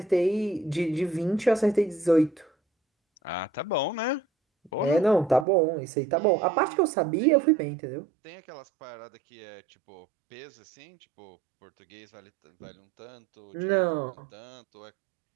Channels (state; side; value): drops out; left; at 5.5 s